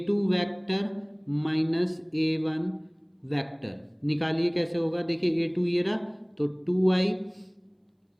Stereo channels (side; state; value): both; identical; correlation 1.00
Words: vector minus a1 vector निकालिए, कैसे होगा। देखिए a2 ये रहा, तो 2i